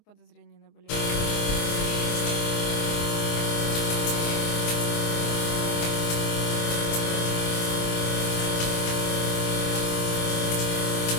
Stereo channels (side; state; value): right; late; 24 ms